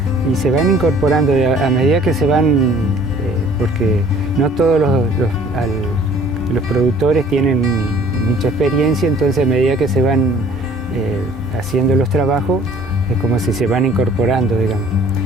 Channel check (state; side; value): normal; both; correlation 0.54